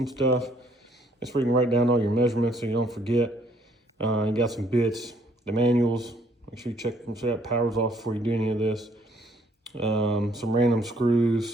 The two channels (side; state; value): both; normal; correlation 0.65